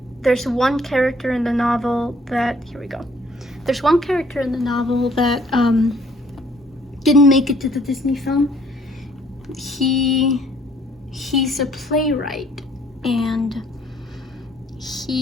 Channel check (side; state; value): both; normal; correlation 0.61